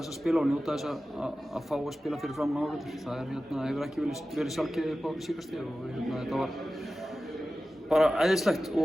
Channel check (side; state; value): both; normal; correlation 0.95